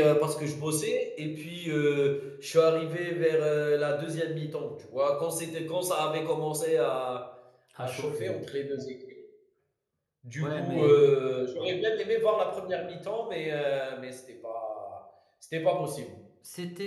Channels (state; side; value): identical; both; correlation 1.00